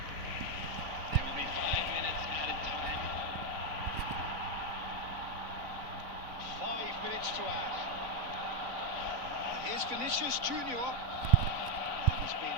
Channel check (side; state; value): left; late; 3.5 ms